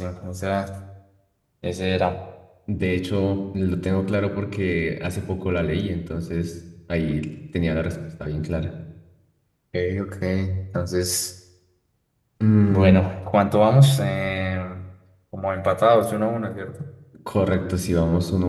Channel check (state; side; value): identical; both; correlation 1.00